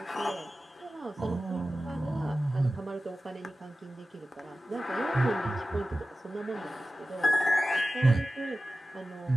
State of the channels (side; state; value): both; normal; correlation 0.95